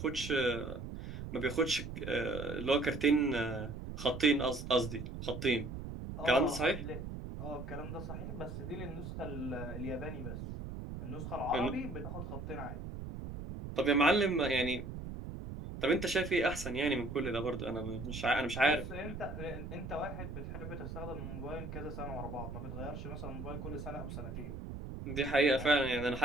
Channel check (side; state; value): right; noise; rumble, 8 dB below the sound